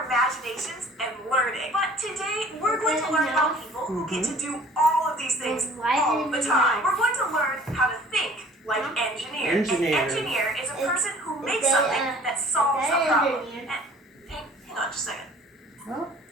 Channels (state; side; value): normal; both; correlation 0.50